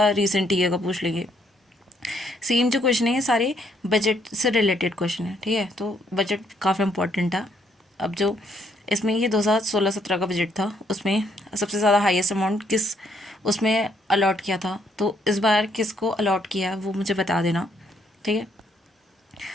रिसेंट ईयर का पूछ लेंगे। सेम जो क्वेश्चन है ये सारे बजट से रिलेटेड क्वेश्चन है। ठीक है, तो बजट काफ़ी इंपॉर्टेंट था। अब जो इसमें ये 2016-17 का बजट था, उसमें सबसे ज़्यादा हाईएस्ट अमाउंट किस उसमें अलॉट किया था, तो इस बार किसको अलॉट किया वो मुझे बता देना। ठीक है,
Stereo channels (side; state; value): both; normal; correlation 0.71